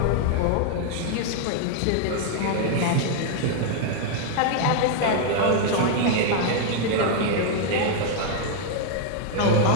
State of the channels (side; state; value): both; different; correlation 0.00